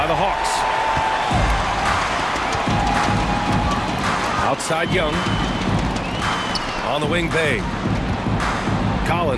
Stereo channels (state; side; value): identical; both; correlation 1.00